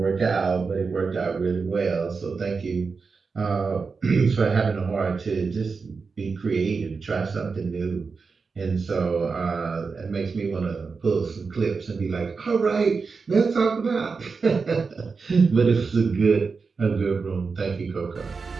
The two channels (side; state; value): left; quieter; 4.8 dB